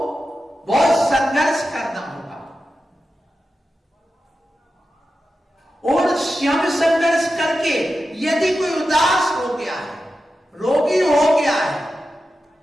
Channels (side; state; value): both; normal; correlation 0.91